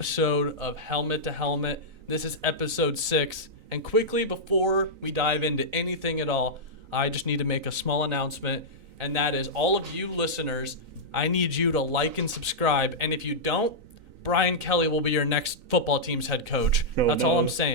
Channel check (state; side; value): late; left; 3.9 ms